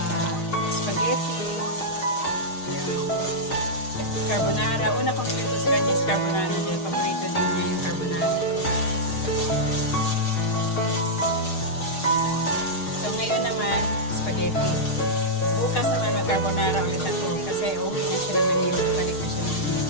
spaghetti, yun, carbonara. Una kong luto sa kanya is carbonara dahil paborito din niya yung carbonara. So ngayon naman, spaghetti. Bukas naman mag-carbonara ulit ako kasi uwi na siya ng Manila, balik na siya ng Manila.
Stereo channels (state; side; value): late; right; 6.5 ms